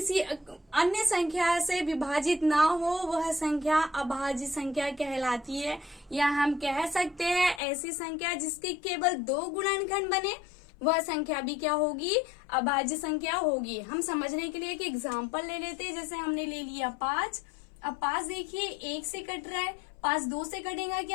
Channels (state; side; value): drops out; right; at 7.6 s